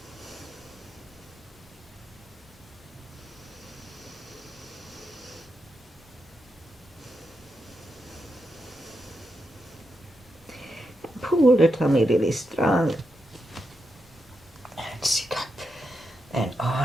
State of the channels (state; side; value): normal; both; correlation 0.85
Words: Pull the tummy really strong. And sit up. And